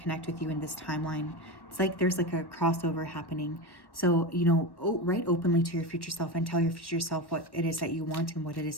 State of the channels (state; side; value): late; right; 1.1 ms